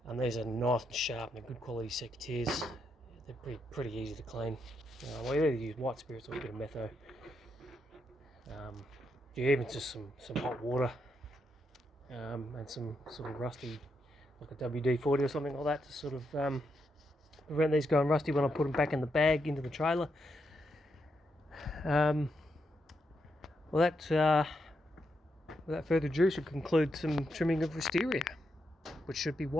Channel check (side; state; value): both; normal; correlation 0.82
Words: And these are nice and sharp and good quality secateurs. They're pretty easy to clean. We either use white spirits or a bit of metho. Even just some hot water, and some sort of rusty, like a WD-40 or something like that, to sort of prevent these going rusty when I put them back in the bag into the trailer. Without further ado, should conclude some trimming of wisteria, which should be